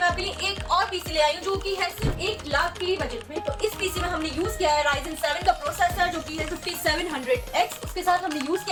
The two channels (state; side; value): identical; both; correlation 1.00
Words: आपके लिए एक और पीसी ले आई हूँ जो कि है सिर्फ 1 लाख के बजट में। तो इस पीसी में हमने यूज किया है Ryzen 7 का प्रोसेसर जो कि है 5700X। उसके साथ हमने यूज